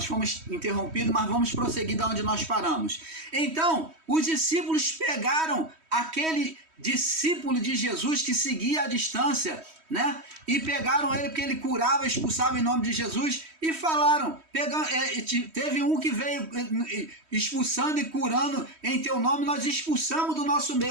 fomos interrompidos, mas vamos prosseguir da onde nós paramos. Então, os discípulos pegaram aquele discípulo de Jesus que seguia à distância, né? E pegaram ele porque ele curava, expulsava em nome de Jesus e falaram, teve um que veio expulsando e curando em teu nome, nós expulsamos do nosso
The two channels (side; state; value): left; late; 3.1 ms